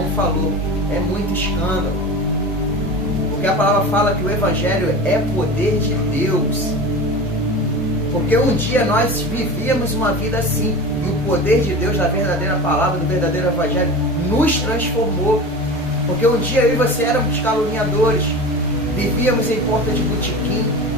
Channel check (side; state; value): both; normal; correlation 0.31